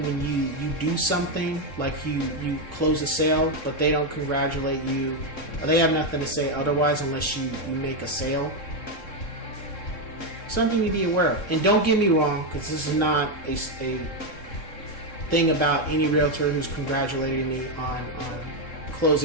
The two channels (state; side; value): late; right; 3.7 ms